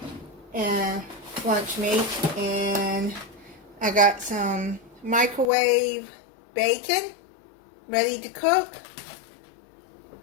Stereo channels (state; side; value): drops out; right; at 5.5 s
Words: and lunch meat, and I got some microwave bacon ready to cook,